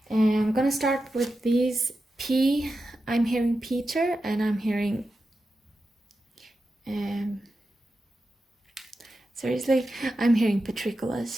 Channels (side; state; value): both; normal; correlation 0.90